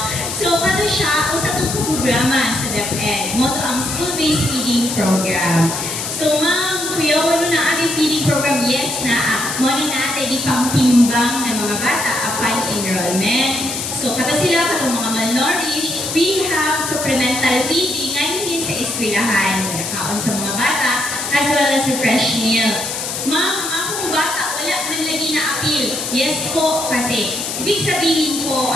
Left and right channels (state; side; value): noise; left; hiss, 4 dB below the sound